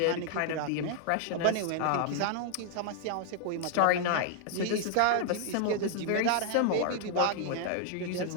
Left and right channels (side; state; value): both; different; correlation 0.00